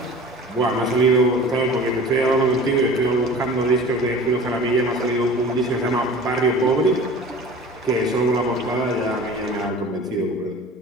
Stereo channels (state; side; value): normal; both; correlation 0.41